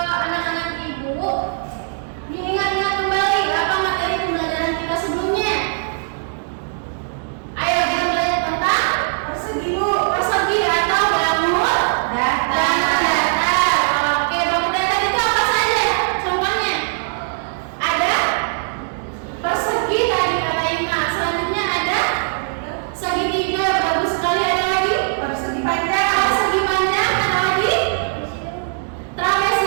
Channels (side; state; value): left; silent; 66 dB below the other